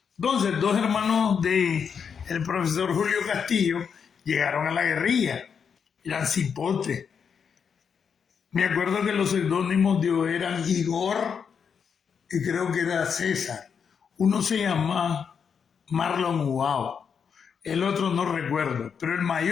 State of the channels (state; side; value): quieter; right; 6.7 dB